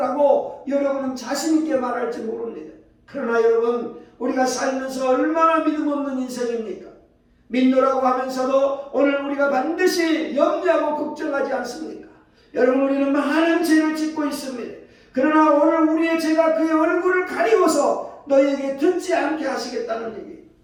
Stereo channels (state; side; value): identical; both; correlation 1.00